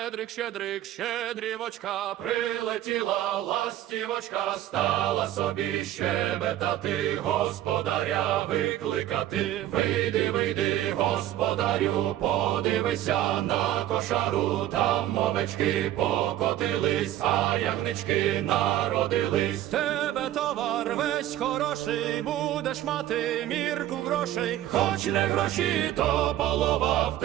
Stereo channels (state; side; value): quieter; left; 13.1 dB